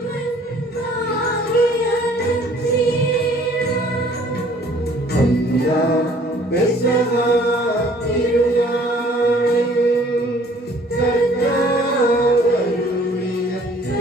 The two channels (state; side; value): normal; both; correlation 0.56